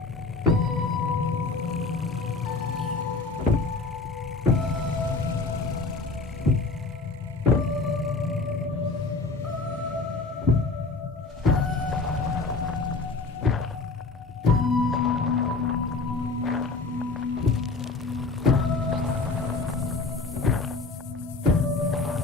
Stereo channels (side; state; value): right; quieter; 3.8 dB